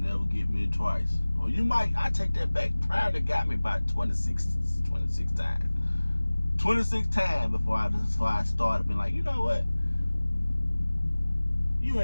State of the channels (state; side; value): inverted; both; correlation -1.00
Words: get me twice. Or you might, I take that back, probably got me about 26 times. 26 times before I started being like, you know what? You